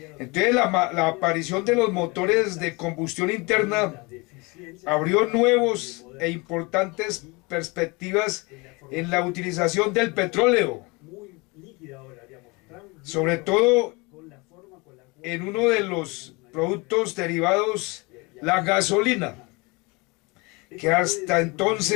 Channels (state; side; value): quieter; right; 26.7 dB